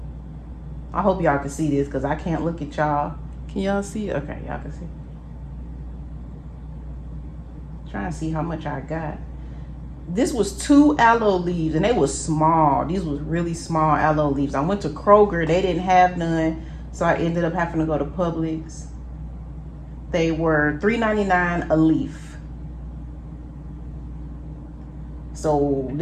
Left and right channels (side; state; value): both; identical; correlation 1.00